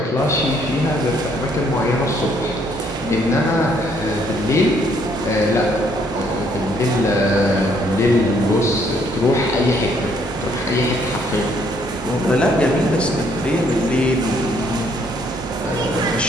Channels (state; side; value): normal; both; correlation 0.67